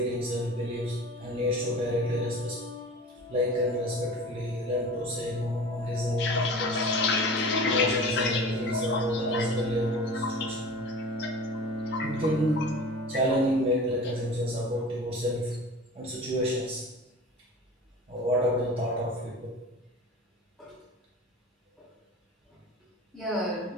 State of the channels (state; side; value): normal; both; correlation 0.37